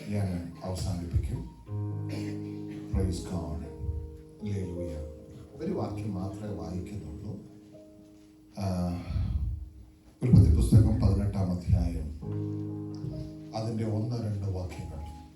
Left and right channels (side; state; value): both; identical; correlation 1.00